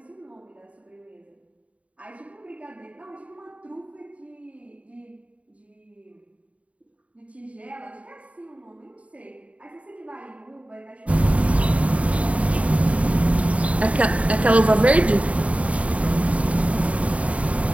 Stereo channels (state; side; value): late; left; 0.066 ms